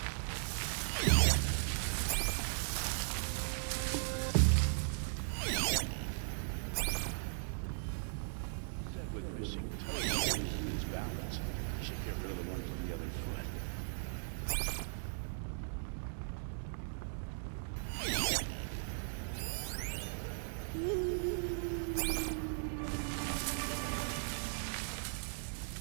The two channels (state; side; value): silent; left; digital silence